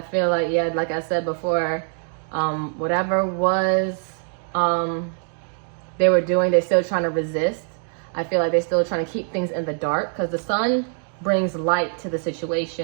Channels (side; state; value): left; silent; 58 dB below the other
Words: feel like, yeah, like I said before, whatever was they were doing, they're still trying to resist. I feel like they're still trying to keep things in the dark, because the sun brings light to the